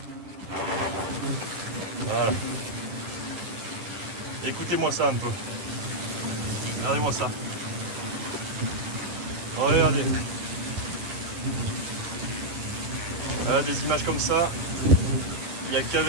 Voilà. Écoutez-moi ça un peu. Regardez-moi ça. Regardez. Des images comme ça, il n'y a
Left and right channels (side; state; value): left; late; 10 ms